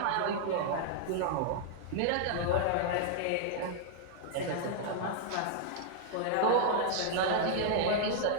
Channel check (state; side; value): different; both; correlation -0.01